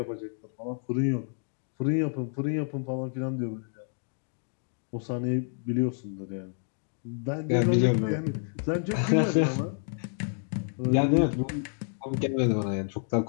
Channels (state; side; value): silent; right; digital silence